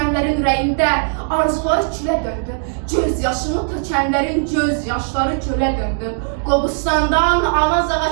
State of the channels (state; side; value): silent; left; digital silence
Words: ürəyində, arzuları külə döndü. Göz yaşımı tökənlərin göz yaşları gölə döndü. Qobustandan, Anazağa